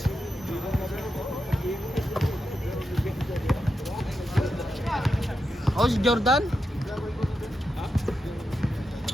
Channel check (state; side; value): normal; both; correlation 0.87